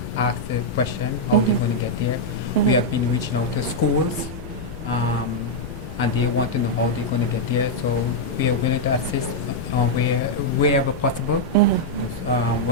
ask the question how they're going to get there. We have been reaching out to schools. And they want to know how they're going to get there. So we are willing to assist wherever possible,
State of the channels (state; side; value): noise; left; rumble, 14 dB below the sound